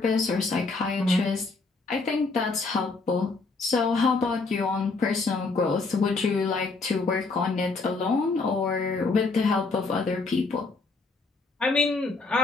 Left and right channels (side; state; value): right; quieter; 3.9 dB